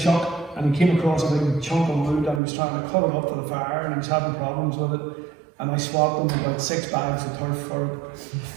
and he came across a big chunk of wood and he was trying to cut it up for the fire, and he was having problems with it, and I swapped him about 6 bags of turf for it.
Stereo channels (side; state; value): left; drops out; at 2.4 s